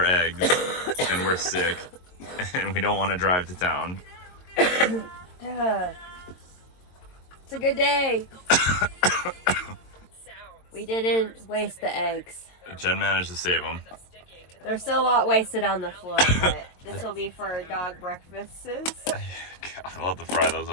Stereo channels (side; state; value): right; late; 22 ms